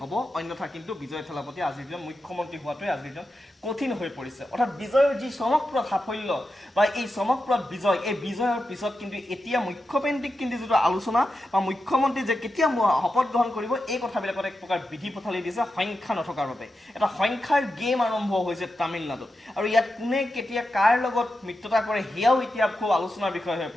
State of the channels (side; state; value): both; normal; correlation 0.89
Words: অন্যথা কিন্তু বিজয় থালাপতি আজিৰ দিনত মুখ্যমন্ত্ৰী হোৱাটোৱে আজিৰ দিনত কঠিন হৈ পৰিছে। অৰ্থাৎ বিজয়ৰ যি চমকপ্ৰদ সাফল্য বা এই চমকপ্ৰদ বিজয়, এই বিজয়ৰ পিছত কিন্তু এতিয়া মুখ্যকেন্দ্ৰিক কিন্তু যিটো আলোচনা বা মুখ্যমন্ত্ৰী যে কেতিয়া শপত গ্ৰহণ কৰিব, এই কথাবিলাকত এক প্ৰকাৰ বিধি পথালি দিছে সংখ্যা নথকাৰ বাবে। এটা সংখ্যাৰ গেম আৰম্ভ হৈছে তামিলনাডুত, আৰু ইয়াত কোনে কেতিয়া কাৰ লগত মিত্ৰতা কৰে, সেয়াও এতিয়া খুব আলোচনাৰ বিষয় হৈ